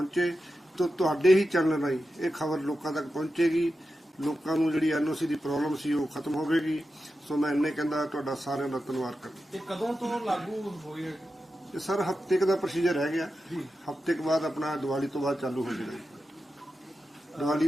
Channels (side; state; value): both; normal; correlation 0.91